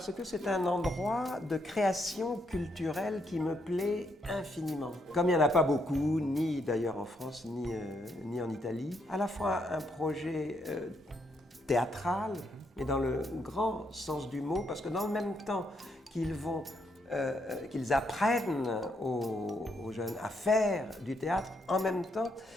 que c'est un endroit de création culturelle qui me plaît infiniment. Comme il n'y en a pas beaucoup, ni d'ailleurs en France, ni en Italie, à la fois un projet théâtral, mais dans le grand sens du mot, parce que dans le même temps qu'ils apprennent aux jeunes à faire du théâtre, en même temps,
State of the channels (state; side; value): normal; both; correlation 0.76